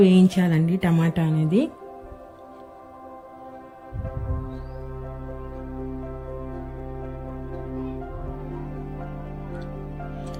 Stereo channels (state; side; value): identical; both; correlation 1.00